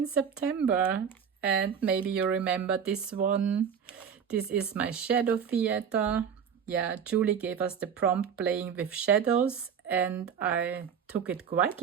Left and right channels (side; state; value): left; quieter; 7.4 dB